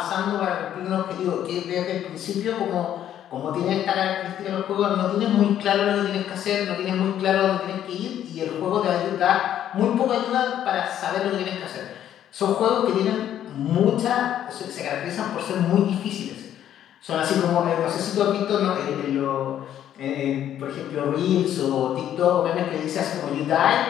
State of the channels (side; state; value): right; quieter; 10.8 dB